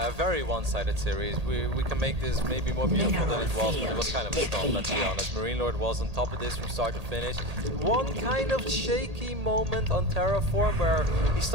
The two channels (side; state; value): left; late; 1.8 ms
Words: a very one-sided series. We can make this maybe more beautiful than it was, but it was kind of a storm, let's be honest. Marine Lord was on top of this from start to finish. One kind of shaky moment on Terraform where he